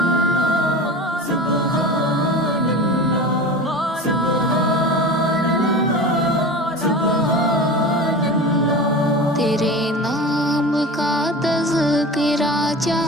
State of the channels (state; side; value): normal; both; correlation 0.32